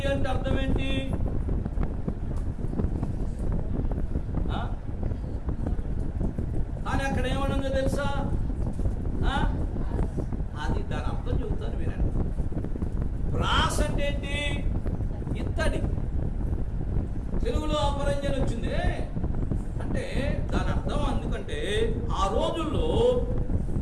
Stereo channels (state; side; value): identical; both; correlation 1.00